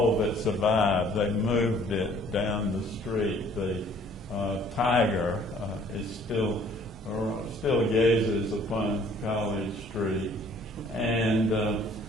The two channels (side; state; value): both; normal; correlation 0.57